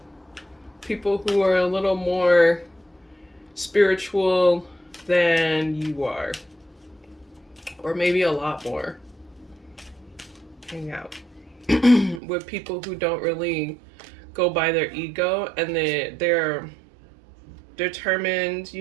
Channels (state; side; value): drops out; left; at 12.2 s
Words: people who are a little more spiritual than you are, or maybe a lot more. Hang out with people who don't really go by their ego, and they're determined.